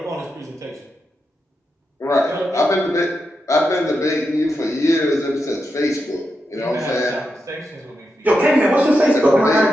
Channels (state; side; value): normal; both; correlation 0.86